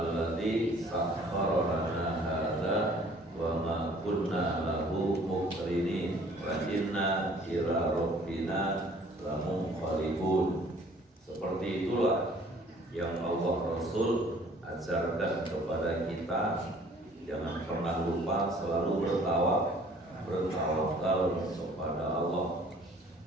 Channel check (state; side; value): normal; both; correlation 0.55